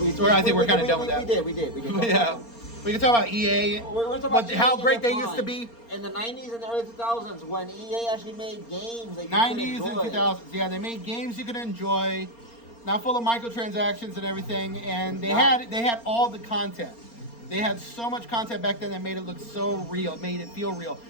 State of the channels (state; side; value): late; right; 4.3 ms